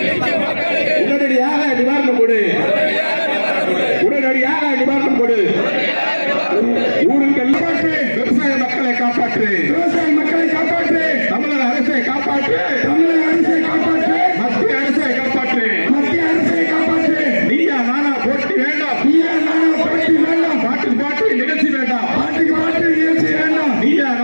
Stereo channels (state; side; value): inverted; both; correlation -1.00